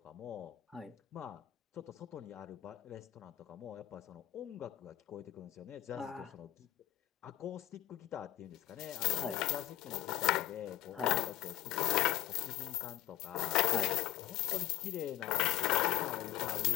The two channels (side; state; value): right; quieter; 14.2 dB